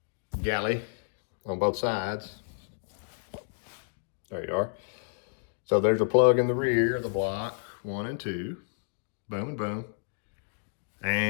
galley on both sides. There you are. So there's a plug in the rear of the block, 1 and 2. Boom and boom.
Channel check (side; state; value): right; silent; digital silence